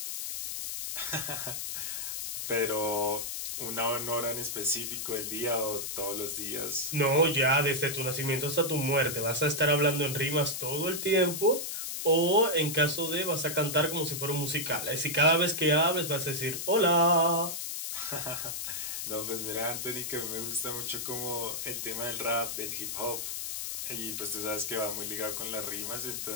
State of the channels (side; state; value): left; noise; hiss, 4 dB below the sound